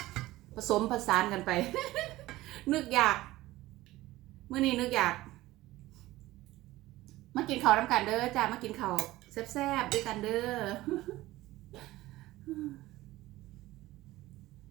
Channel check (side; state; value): left; quieter; 17.4 dB